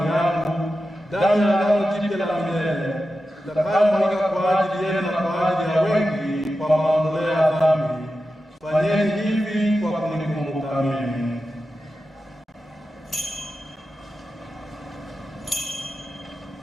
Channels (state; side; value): normal; both; correlation 0.91